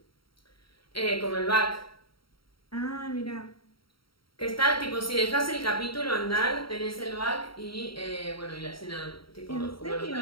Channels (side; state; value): right; late; 0.74 ms